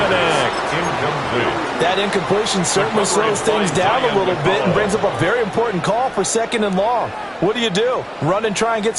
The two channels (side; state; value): both; identical; correlation 1.00